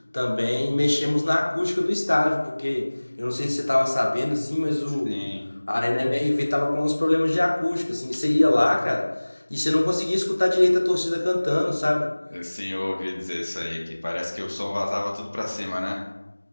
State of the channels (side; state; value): both; inverted; correlation -1.00